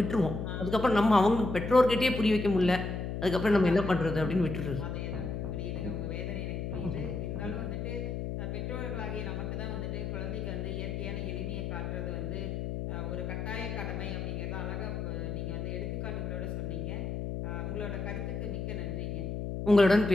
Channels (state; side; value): noise; left; hum, 4 dB below the sound